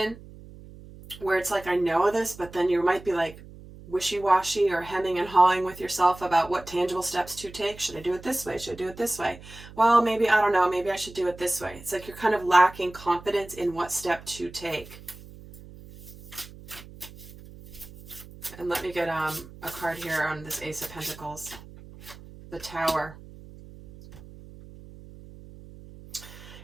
where it's like, I know this, but then you might be like wishy-washy or hemming and hawing with yourself about what tangible steps to take. Should I do it this way? Should I do it this way? Well, maybe, I don't know, maybe I should do it this way. It's like you're kind of lacking confidence in what step to take. And let me get a card here on this Ace of Pentacles. The Tower.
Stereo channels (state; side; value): noise; right; hum, 18 dB below the sound